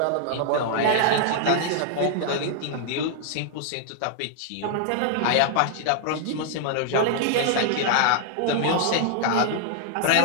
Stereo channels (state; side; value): different; both; correlation -0.01